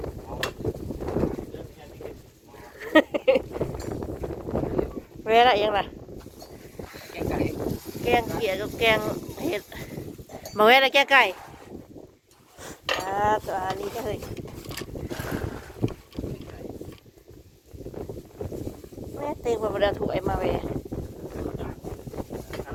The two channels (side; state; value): both; identical; correlation 1.00